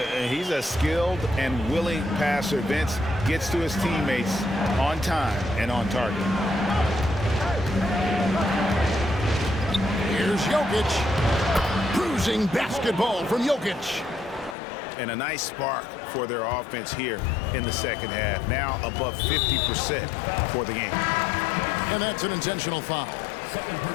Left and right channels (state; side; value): drops out; right; at 14.6 s